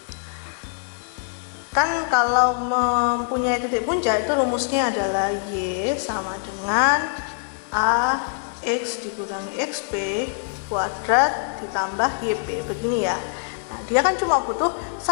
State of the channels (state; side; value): silent; right; digital silence